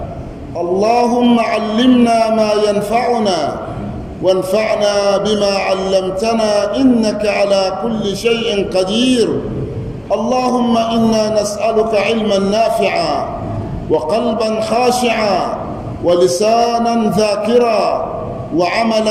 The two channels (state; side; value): identical; both; correlation 1.00